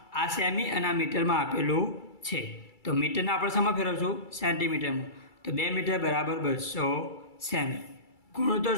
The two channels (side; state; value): right; late; 2.3 ms